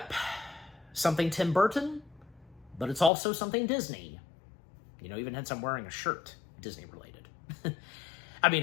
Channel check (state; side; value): drops out; right; at 3.1 s